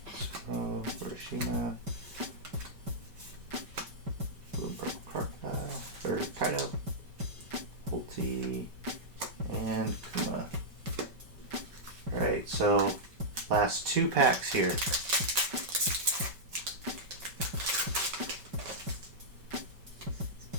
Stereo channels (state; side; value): late; left; 5.2 ms